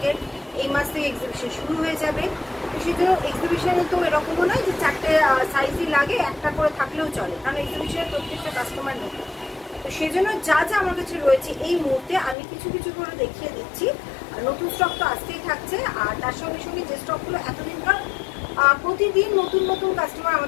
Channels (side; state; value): right; drops out; at 12.4 s